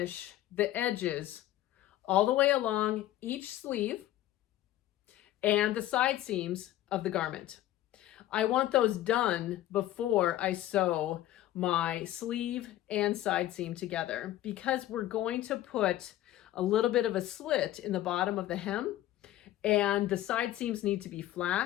the edges all the way along each sleeve and the side seams of the garment. I want those done before I sew my sleeve and side seam together, because we're going to put a little bit of a slit in the bottom of the hem and the side seams need to be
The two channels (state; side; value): quieter; right; 14.1 dB